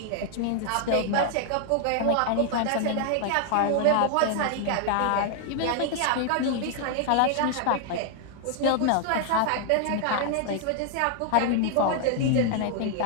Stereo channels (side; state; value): both; different; correlation 0.00